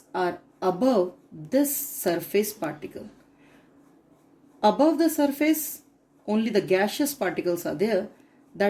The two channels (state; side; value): identical; both; correlation 1.00